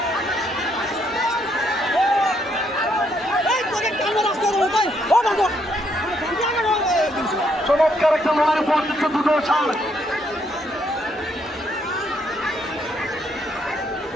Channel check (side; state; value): both; normal; correlation 0.73